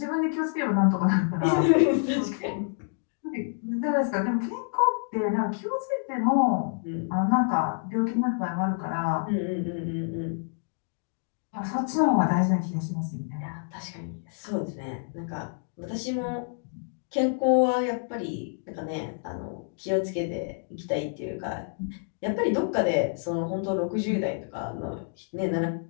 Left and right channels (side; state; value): right; silent; digital silence